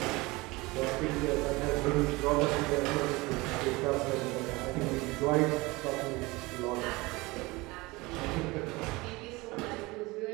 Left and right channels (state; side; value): quieter; left; 22.7 dB